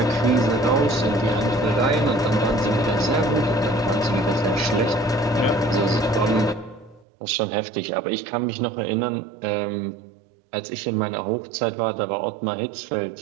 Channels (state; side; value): drops out; left; at 7.1 s